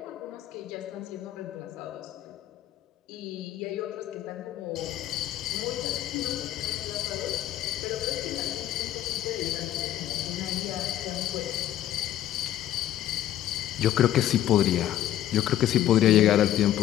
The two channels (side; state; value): right; quieter; 12.3 dB